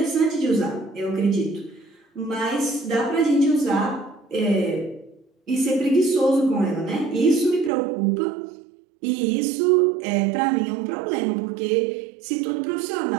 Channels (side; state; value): left; drops out; at 7.7 s